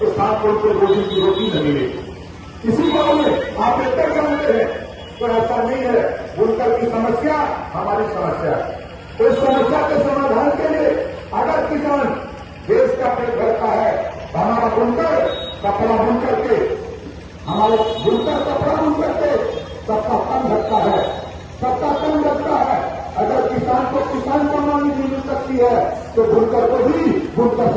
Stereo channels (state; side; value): identical; both; correlation 1.00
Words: 7 करोड़ के रोजी की रोटी न मिलेगी। इसी को आप बेहतर जानते हैं। तो ऐसा नहीं है, बुनकर की समस्या हमारी समस्या है। तो इस समस्या के समाधान के लिए अगर किसान देश का पेट भरता है तो हमारा बुनकर कपड़ा बुन करके, हमारे बुनकर कपड़ा बुन करके सबका कम रखता है, सबका कम रखता है। अगर किसान को किसान सम्मान निधि मिल सकती है तो बुनकर को भी बुनकर